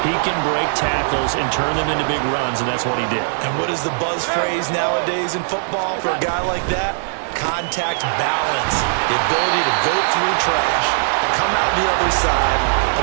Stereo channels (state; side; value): silent; left; digital silence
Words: He can break tackles and turn them into big runs, and that's what he did. And what is the buzz phrase nowadays in football for a guy like that? Contact balance. The ability to go through trash, come out the other side,